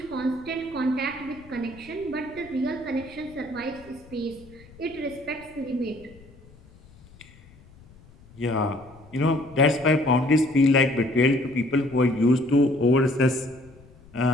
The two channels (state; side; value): noise; left; rumble, 24 dB below the sound